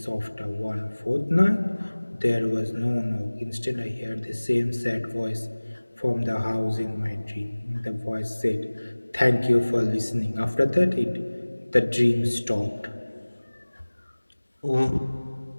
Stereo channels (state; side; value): inverted; both; correlation -1.00